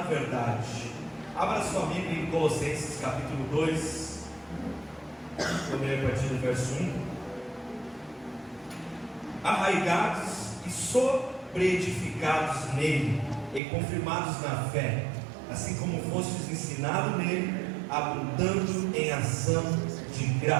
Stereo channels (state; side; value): drops out; left; at 13.6 s